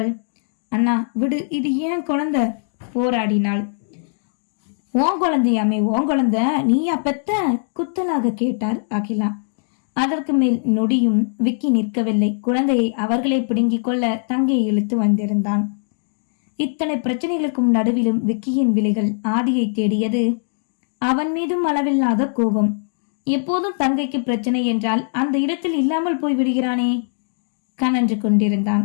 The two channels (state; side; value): silent; right; digital silence